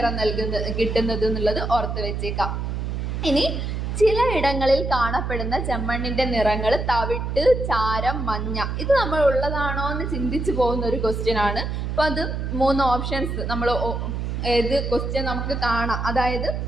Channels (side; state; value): right; noise; hum, 3 dB below the sound